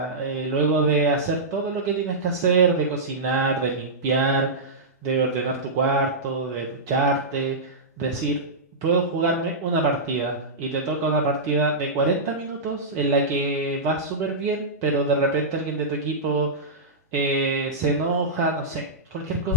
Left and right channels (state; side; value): normal; both; correlation -0.14